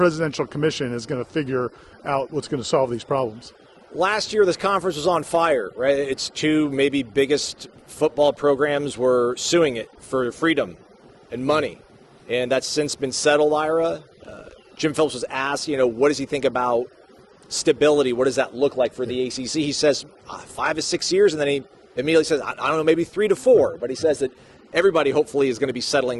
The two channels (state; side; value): identical; both; correlation 1.00